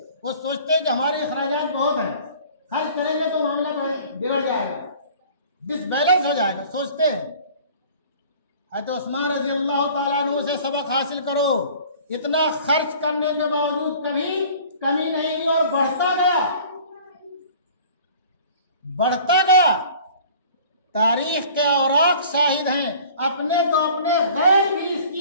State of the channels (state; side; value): inverted; both; correlation -0.48